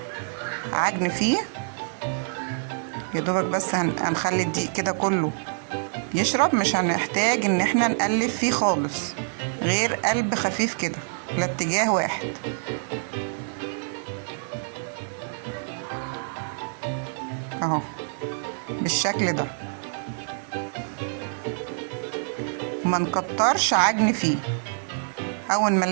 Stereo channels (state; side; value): silent; left; digital silence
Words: عجن فيه يا دوبك بس. هنخلي الدقيق كده كله يشرب، مش هنحتاج ان احنا نقلب فيه خالص، غير قلب خفيف كده لاتجاه واحد اهو بالشكل ده. وما نكترش عجن فيه. اول ما